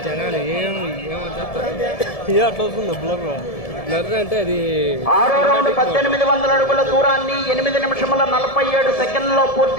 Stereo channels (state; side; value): late; right; 1.7 ms